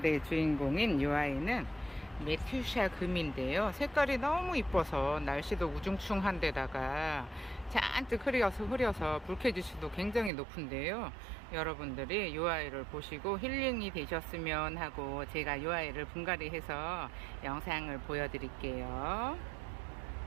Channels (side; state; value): left; drops out; at 10.3 s